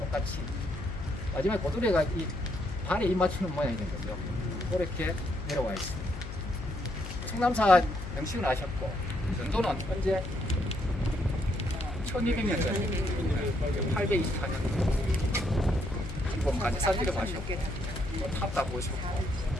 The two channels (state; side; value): noise; left; hum, 8 dB below the sound